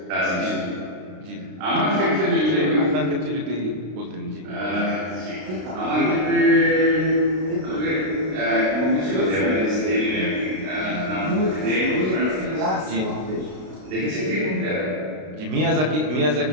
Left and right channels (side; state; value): left; late; 32 ms